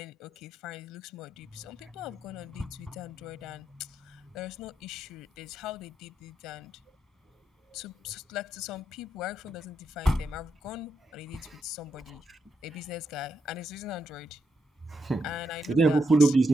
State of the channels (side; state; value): both; normal; correlation 0.81